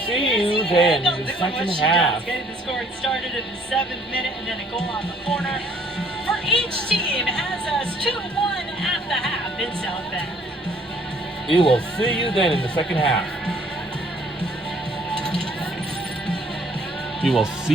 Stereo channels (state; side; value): normal; both; correlation 0.60